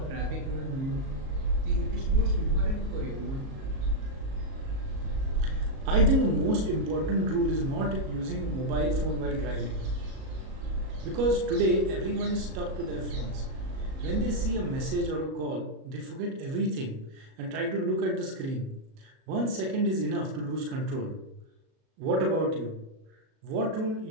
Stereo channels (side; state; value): left; late; 37 ms